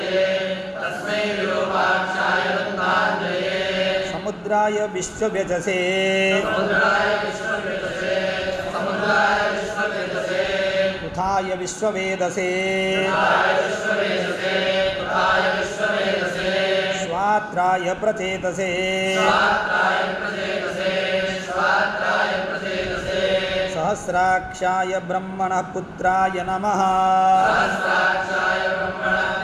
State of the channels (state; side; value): identical; both; correlation 1.00